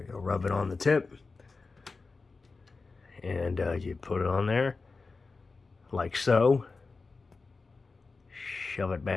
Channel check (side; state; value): right; quieter; 4.1 dB